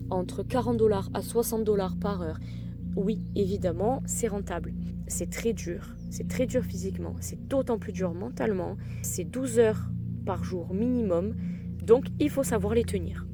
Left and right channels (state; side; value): identical; both; correlation 1.00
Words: entre $40 à $60 par heure. Oui, évidemment, c'est rentable. C'est très dur physiquement. C'est d'autant plus dur mentalement. C'est 12 heures par jour minimum. Donc, il faut savoir les tenir.